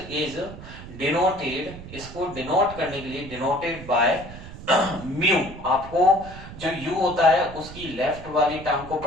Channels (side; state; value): right; noise; rumble, 14 dB below the sound